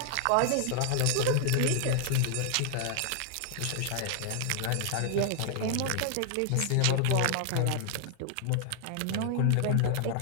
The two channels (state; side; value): different; both; correlation 0.00